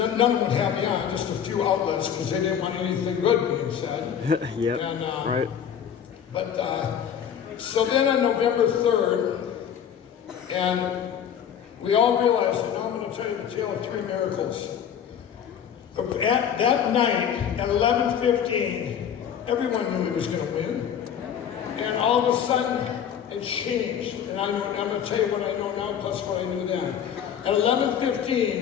of them would have me on. Just a few outlets because they didn't want anything good being said. Yep. And, right. But so then on November 3rd, and we all realized, and now I'm going to tell you the tale of three miracles. At that night, at 11:15, everyone knew he was going to win. And all of a sudden, it changed. And I'm going to tell you what I know now, plus what I knew then. At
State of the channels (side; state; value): right; quieter; 8.7 dB